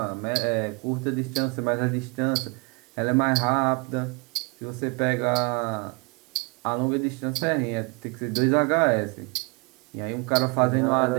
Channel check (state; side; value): quieter; left; 30.3 dB